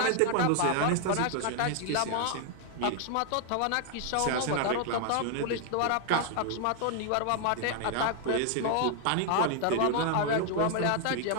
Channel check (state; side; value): different; both; correlation 0.00